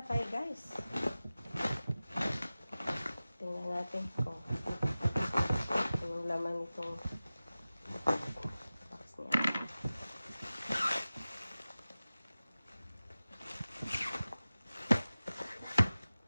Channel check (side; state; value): both; inverted; correlation -0.96